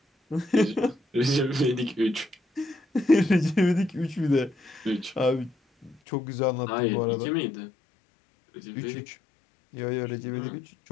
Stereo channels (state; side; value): drops out; right; at 6.0 s